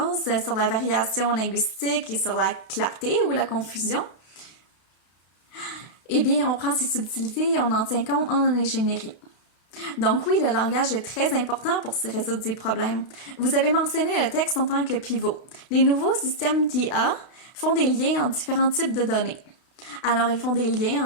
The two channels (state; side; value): late; right; 32 ms